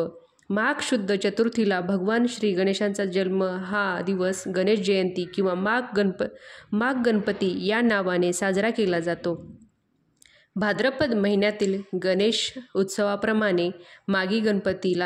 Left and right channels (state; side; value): identical; both; correlation 1.00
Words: माघ शुद्ध चतुर्थीला भगवान श्री गणेशांचा जन्म हा दिवस गणेश जयंती किंवा माघ गणपती या नावाने साजरा केला जातो। भाद्रपद महिन्यातील गणेश उत्सवाप्रमाणे मागी